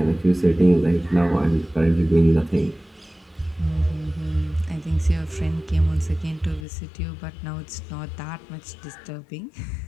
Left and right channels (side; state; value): right; drops out; at 6.7 s